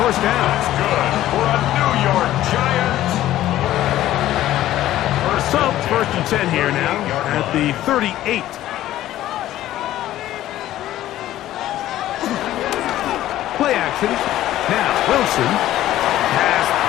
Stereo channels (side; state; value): right; quieter; 13.9 dB